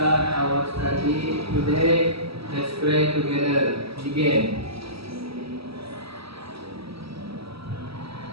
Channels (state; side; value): late; left; 0.76 ms